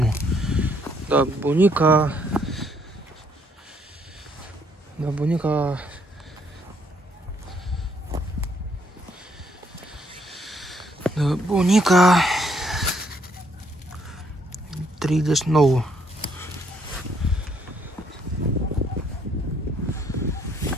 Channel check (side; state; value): both; normal; correlation 0.69